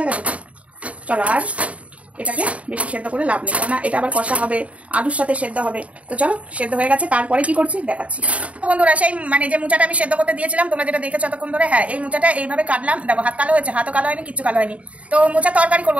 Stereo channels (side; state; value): left; late; 0.066 ms